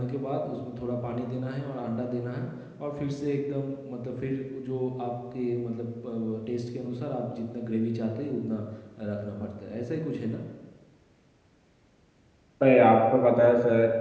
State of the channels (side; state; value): both; identical; correlation 1.00